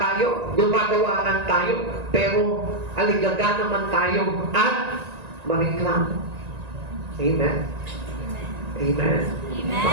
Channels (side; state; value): left; late; 1.9 ms